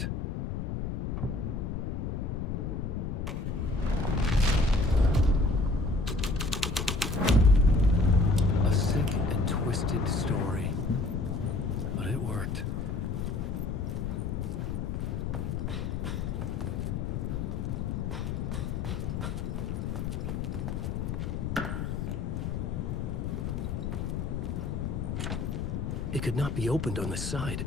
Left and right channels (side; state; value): left; noise; rumble, 2 dB below the sound